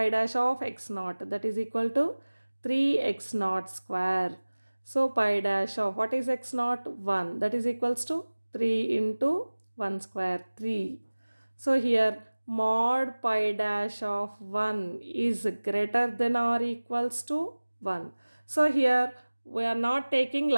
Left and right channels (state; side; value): inverted; both; correlation -1.00